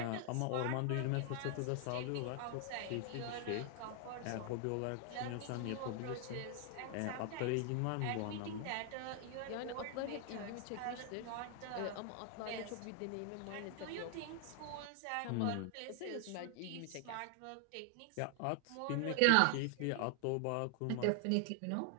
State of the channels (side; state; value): both; different; correlation 0.00